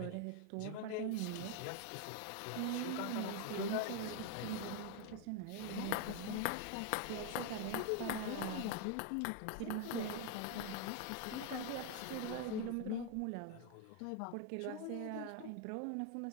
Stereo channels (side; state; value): both; different; correlation 0.01